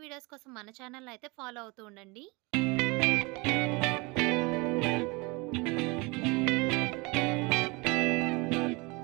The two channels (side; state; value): left; quieter; 26.7 dB